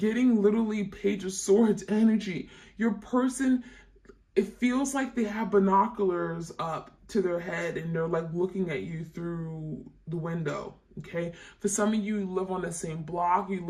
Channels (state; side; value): identical; both; correlation 1.00